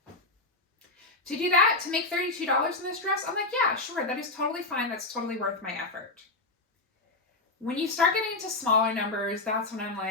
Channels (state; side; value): quieter; right; 3.1 dB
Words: To do that, to make $32 in this dress, I'm like, yeah, sure, that is totally fine. That's totally worth my effort. When you start getting into smaller numbers, that's when I'm